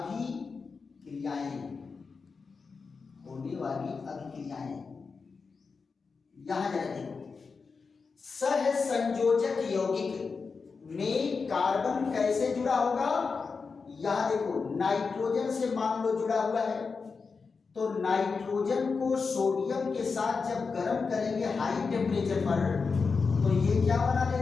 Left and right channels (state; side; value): quieter; right; 4.9 dB